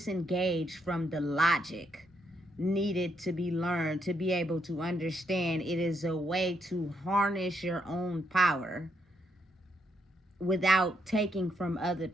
from the logic needed to be learned to be able to understand it is a way to harness your own power without taking from other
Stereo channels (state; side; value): normal; both; correlation 0.76